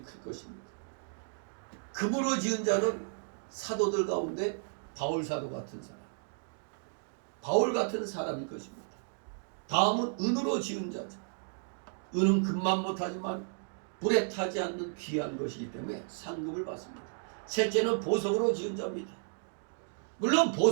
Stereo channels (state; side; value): silent; left; digital silence